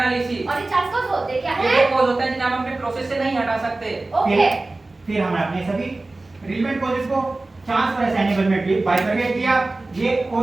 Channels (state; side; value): quieter; left; 3.1 dB